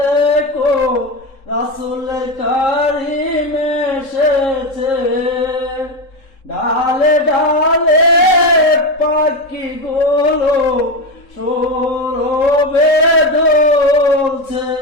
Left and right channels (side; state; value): right; late; 3.7 ms